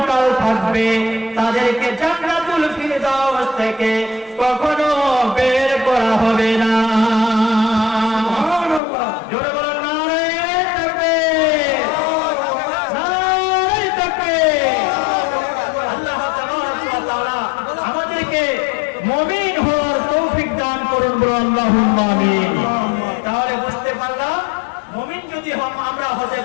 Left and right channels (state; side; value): drops out; right; at 8.8 s